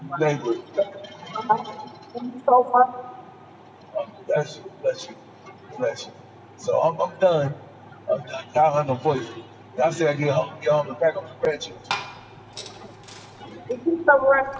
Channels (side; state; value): both; identical; correlation 1.00